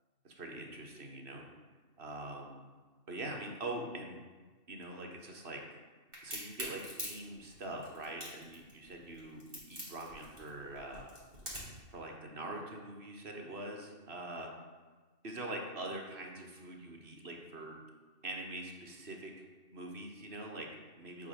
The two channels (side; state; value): left; late; 2.7 ms